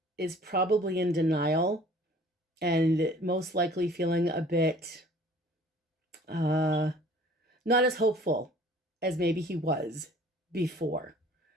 is probably in denial and most likely feeling a bit not as hopeful as maybe he was before.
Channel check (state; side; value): normal; both; correlation 0.51